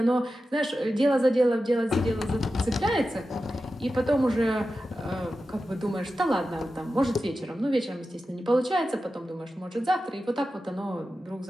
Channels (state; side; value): normal; both; correlation 0.92